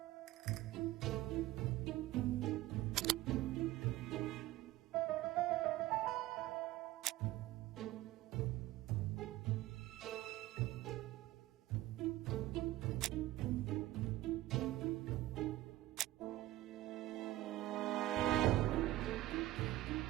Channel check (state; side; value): quieter; left; 16.1 dB